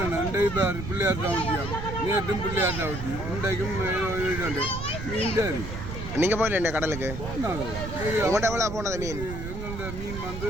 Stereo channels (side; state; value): right; noise; rumble, 7 dB below the sound